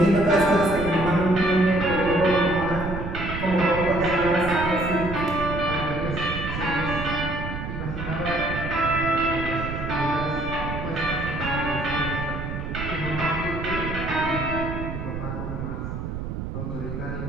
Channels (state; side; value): noise; right; rumble, 6 dB below the sound